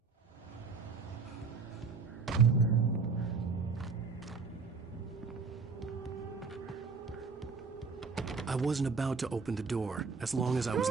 I wasn't about to open the door, as long as I was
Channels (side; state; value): left; quieter; 4.8 dB